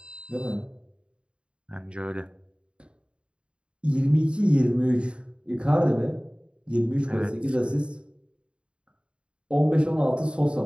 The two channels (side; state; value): left; late; 0.056 ms